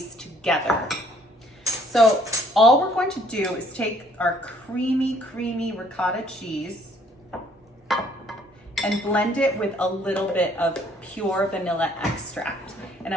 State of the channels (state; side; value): normal; both; correlation 0.63